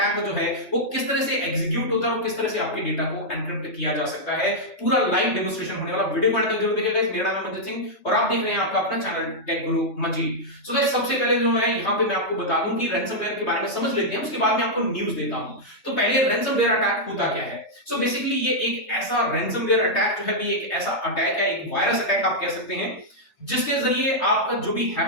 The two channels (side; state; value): right; late; 3.2 ms